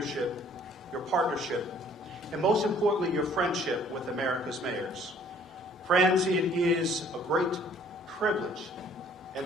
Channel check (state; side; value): normal; both; correlation 0.57